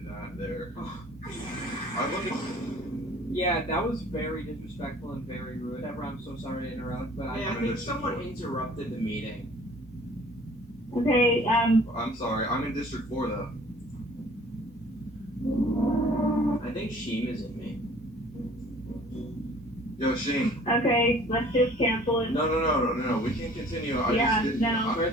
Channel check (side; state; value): both; normal; correlation 0.51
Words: that there. I look at. Yeah, that was very disrespectful and very rude. Deborah, I'm so sorry to interrupt, but Hey, I think someone interrupted the meeting. Okay, I'm sorry. I'm in District 4 though. I think Sheem is in me. Yo, Shane. okay, let's just cancel it. No. We can't continue. Yeah, no.